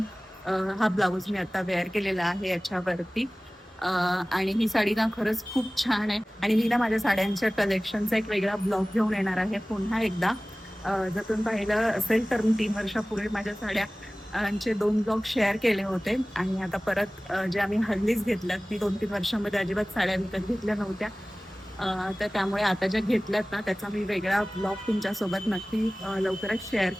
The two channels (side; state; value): both; normal; correlation 0.98